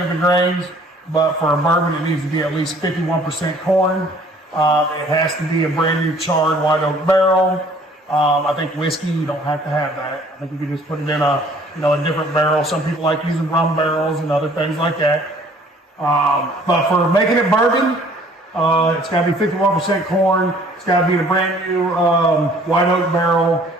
the grains, but for a bourbon, it needs to be at least 51% corn. It has to be a brand new charred white oak barrel. I think whiskey, you don't have to have that. I think you can just put it in a different barrel. Some people like using rum barrels and other things like that. But for making it bourbon, it's got to be 51% corn. It's got to be in a brand new white oak barrel,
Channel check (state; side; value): normal; both; correlation 0.56